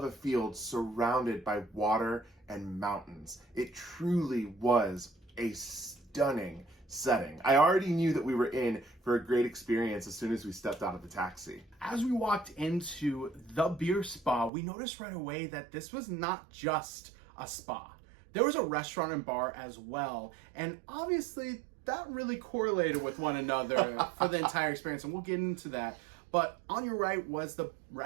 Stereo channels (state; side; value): drops out; left; at 14.5 s